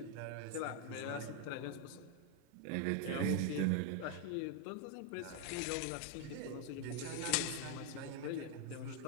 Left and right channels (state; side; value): different; both; correlation 0.01